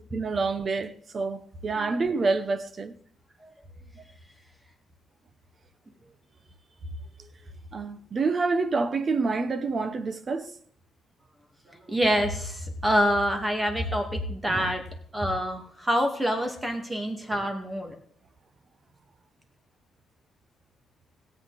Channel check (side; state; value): both; normal; correlation 0.86